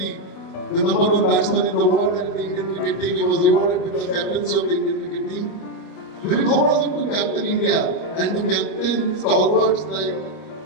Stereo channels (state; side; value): late; right; 25 ms